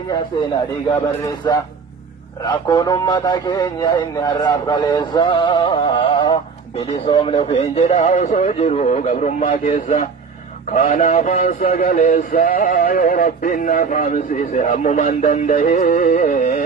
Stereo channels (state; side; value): quieter; left; 5.3 dB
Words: seenaa dhiigaa barreessaa rakkoon ummata keenya inni har'aaf kaleessaa bilisoomne ofiin jedhaa osoo jiru gabrummaa keessa kanaafaan sagaleessaa yoo rabbiin na faamsiise hammumaan